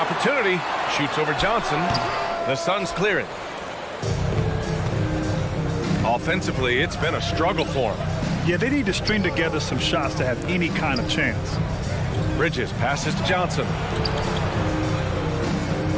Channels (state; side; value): identical; both; correlation 1.00